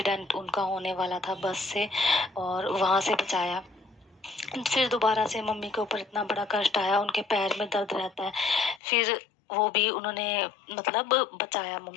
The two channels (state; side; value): drops out; right; at 8.8 s